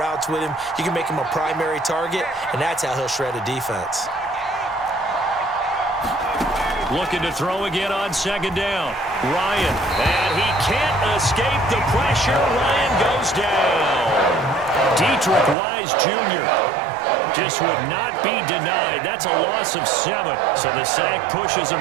with him. You can make him a primary target, and that's how he'll shred a defense. Looking to throw again on second down. Ryan, and he can't escape the pressure. Ryan goes down. Dietrich Wise Jr. just would not be denied. That's a loss of 7. So the sack pushes him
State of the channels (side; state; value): left; drops out; at 15.6 s